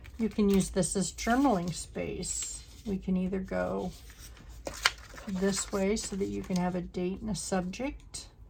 you can use this as journaling space. We can either go this way so that you can have a date and a subject,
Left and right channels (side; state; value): both; identical; correlation 1.00